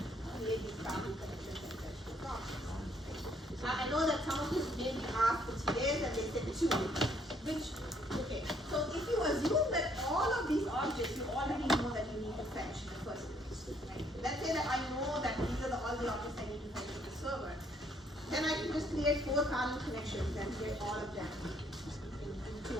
create these boundary connections and fetch those objects. I know that some of you maybe asked which days and they said 2. Okay, so if you assume that all of these objects you already know that you need to fetch in the first place, right? Let's say that I know that these are all the objects I need to fetch to the server. Then I can just create 4 parallel connections and create all of them in 2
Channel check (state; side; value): normal; both; correlation 0.67